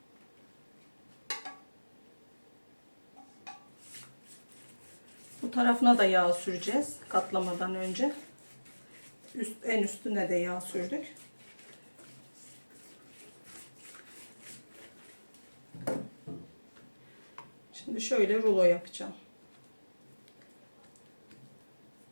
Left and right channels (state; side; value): inverted; both; correlation -1.00